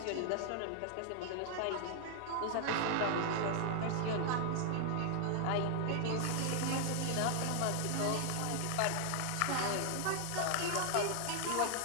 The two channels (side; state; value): both; different; correlation 0.00